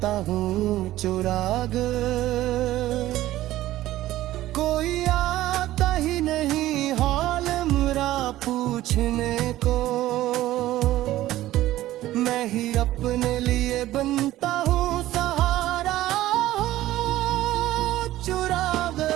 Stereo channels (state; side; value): quieter; left; 15.1 dB